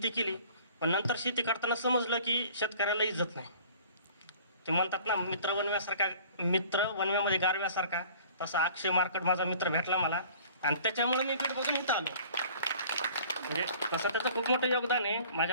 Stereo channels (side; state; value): both; inverted; correlation -0.49